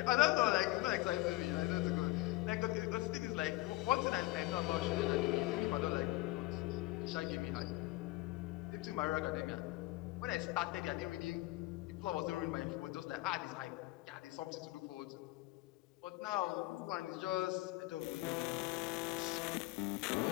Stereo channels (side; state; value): right; quieter; 19.8 dB